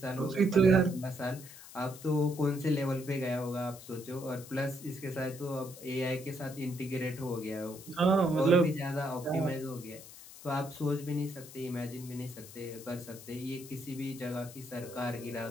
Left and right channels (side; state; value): left; noise; hiss, 16 dB below the sound